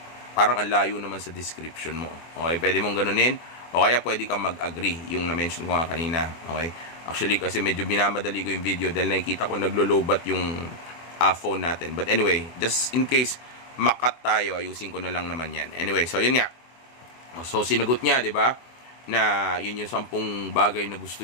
Parang ang layo naman sa description mo. Okay, pwede mong ganunin. O kaya pwede kang mag-agree, yung na-mention ko nga kanina. Okay? Actually, kasi medyo binamadali ko yung video dahil nakikita ko naglo-lowbat yung phone natin. But anyway, just in case makat tayo, ayusin ko na lang naman yan. Anyway, so yun nga. So sinagot niya, di ba? Na yun yung 10 bagay na gusto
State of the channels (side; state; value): right; late; 24 ms